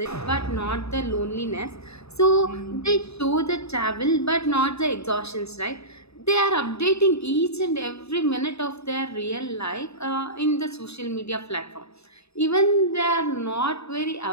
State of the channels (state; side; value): late; right; 0.79 ms